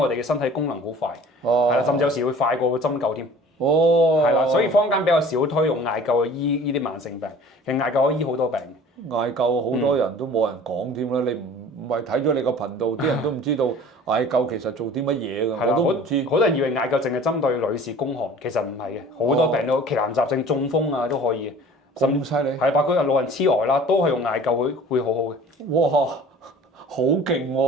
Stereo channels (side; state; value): both; normal; correlation 0.46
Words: 哋嘅身體功能好快。係啦，甚至有時會快過針灸添。係啦，所以坊間比較少推用艾灸去醫呢啲慢性病，其實艾灸可以醫好多病。艾灸好多人都冇人講添啦，你唔係睇咗你個頻道，啲人都唔知道艾灸其實做啲乜嘢㗎，我都唔知。好多人以為艾灸淨係針對女士宮寒，其實唔係嘅，好多病都奇難雜症、中風啊都可以嘅。咁犀利？係，包括老人痴呆啦，都係用艾灸會好好嘅。哇，好勁